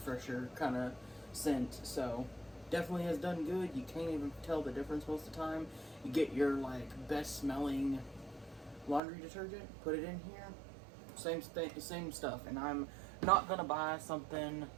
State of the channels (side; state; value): left; drops out; at 9.0 s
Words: kind of scent. So definitely has done good. You can't even tell the difference most of the time. You get your like best smelling laundry detergent, put it in here, same stuff. And I'm not gonna buy something